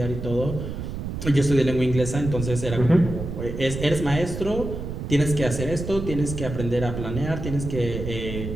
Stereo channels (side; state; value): right; noise; rumble, 6 dB below the sound